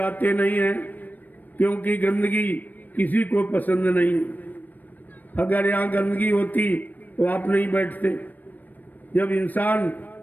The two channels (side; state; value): right; late; 0.086 ms